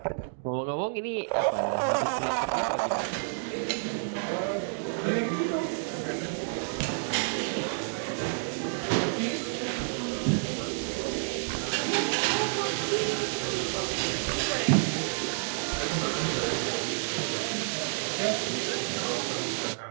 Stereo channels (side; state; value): left; silent; digital silence